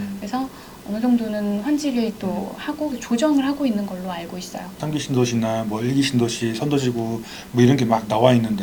그래서 어느 정도는 환지를 또 하고 조정을 하고 있는 걸로 알고 있어요. 3기 신도시나 뭐 1기 신도시, 선도지구 뭐 이런 게 막 나와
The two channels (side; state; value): both; identical; correlation 1.00